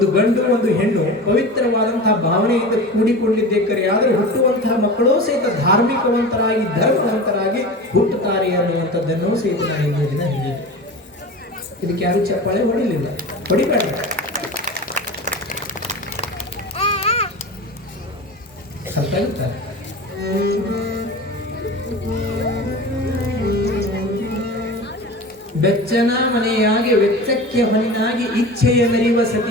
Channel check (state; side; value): normal; both; correlation 0.32